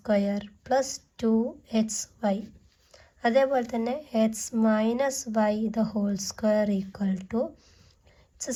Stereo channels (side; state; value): both; identical; correlation 1.00